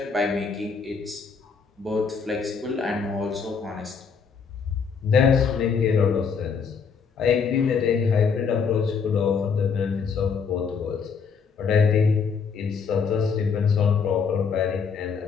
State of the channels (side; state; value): right; quieter; 5.9 dB